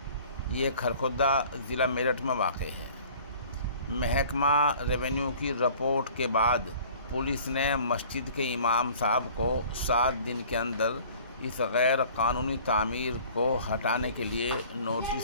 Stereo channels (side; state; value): both; inverted; correlation -0.48